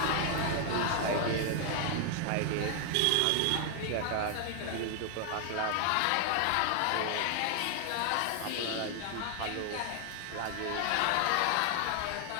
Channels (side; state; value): both; different; correlation 0.00